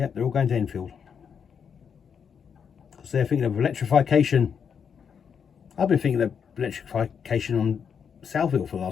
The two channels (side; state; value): right; quieter; 7.0 dB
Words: they're all going to Enfield. Because they're thinking of electrification. I've been thinking of electrification on Southville for the